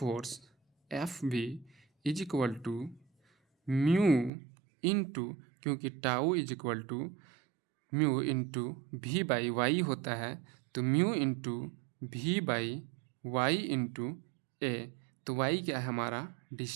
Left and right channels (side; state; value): left; drops out; at 4.3 s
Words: F B is equal to mu into, क्योंकि tau is equal to mu into V by Y होता है, तो mu into V by Y into A. तो वाई क्या है, हमारा